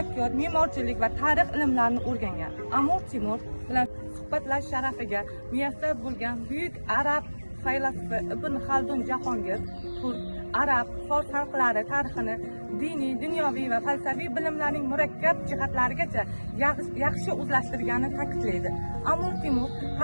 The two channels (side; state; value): both; inverted; correlation -1.00